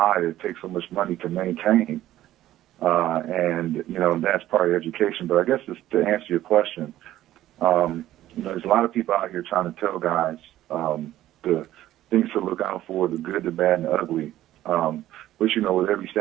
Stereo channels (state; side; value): quieter; left; 13.9 dB